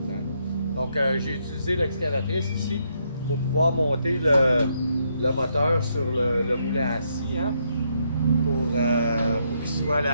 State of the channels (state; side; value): inverted; both; correlation -0.76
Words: Hein? Donc, j'ai utilisé l'excavatrice ici pour pouvoir monter le moteur sur le moulin à scie. Hein? Pour qu'il soit